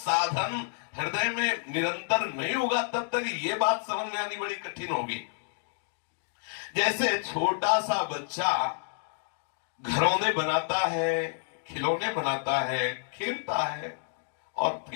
हृदय में निरंतर नहीं होगा, तब तक ये बात समझ में आनी बड़ी कठिन होगी। जैसे छोटा सा बच्चा घरौंदे बनाता है, खिलौने बनाता है, खेलता है और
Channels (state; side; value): silent; right; 58 dB below the other